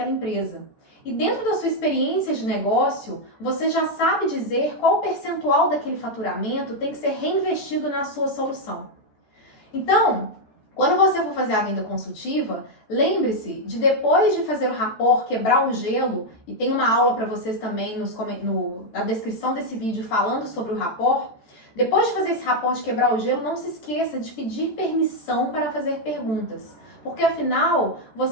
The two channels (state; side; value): late; right; 14 ms